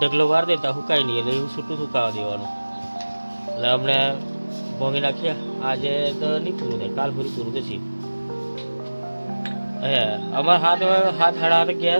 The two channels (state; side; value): inverted; both; correlation -1.00